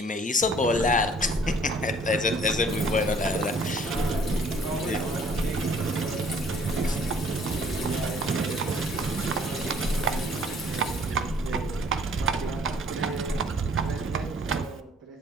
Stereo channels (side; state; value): both; normal; correlation 0.57